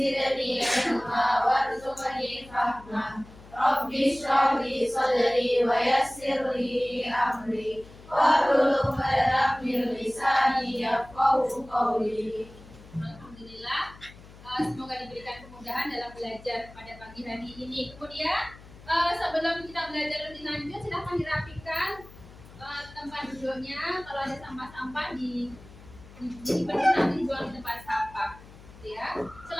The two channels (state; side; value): noise; left; hum, 20 dB below the sound